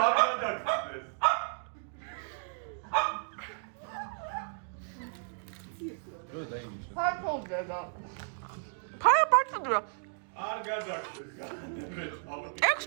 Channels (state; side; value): silent; left; digital silence